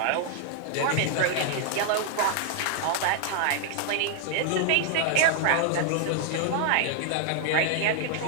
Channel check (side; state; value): both; different; correlation 0.00